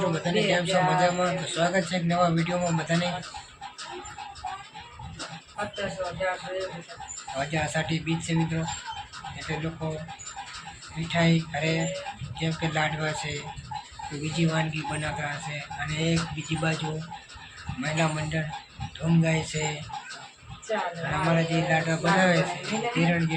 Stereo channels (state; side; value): identical; both; correlation 1.00